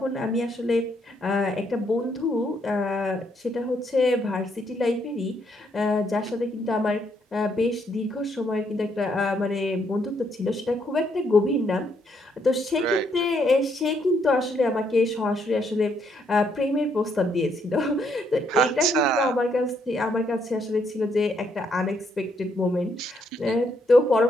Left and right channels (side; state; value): both; normal; correlation 0.73